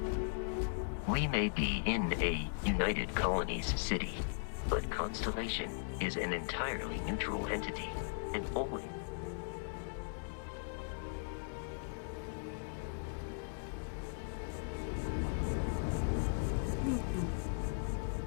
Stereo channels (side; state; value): right; silent; digital silence